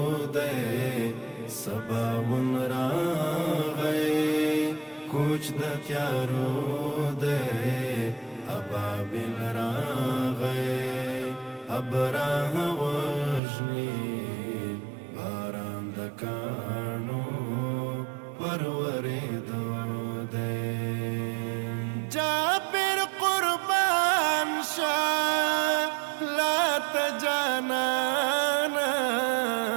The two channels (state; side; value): drops out; left; at 13.4 s